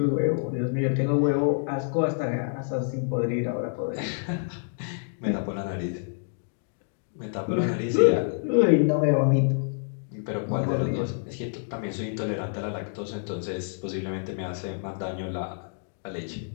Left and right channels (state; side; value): silent; right; digital silence